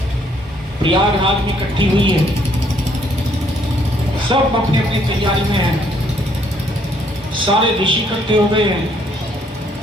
प्रयागराज में इकट्ठी हुई है, सब अपनी अपनी तैयारी में हैं, सारे ऋषि इकट्ठे हो गए हैं।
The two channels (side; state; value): both; normal; correlation 0.67